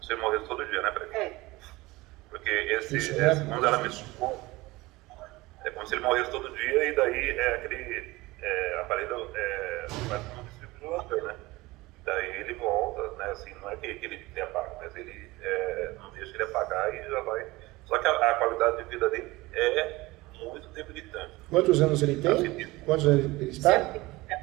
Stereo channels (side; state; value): left; quieter; 20.7 dB